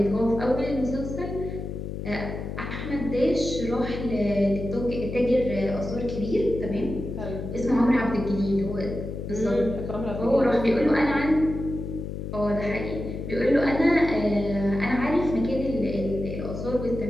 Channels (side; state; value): left; noise; hum, 6 dB below the sound